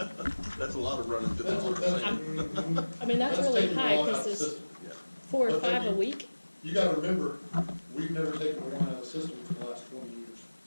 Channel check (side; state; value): both; inverted; correlation -1.00